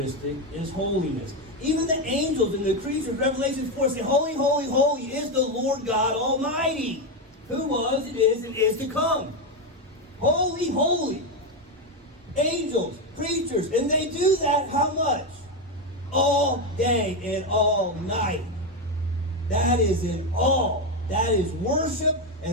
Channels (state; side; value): normal; both; correlation 0.09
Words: is holiness. Even the angels and the creatures, Revelation 4 say, holy, holy, holy is the Lord God Almighty, who was, it is, and is to come. Holy, holy. Angels, creatures, and they do that how much? All day and all night. That is in awe. That is worship,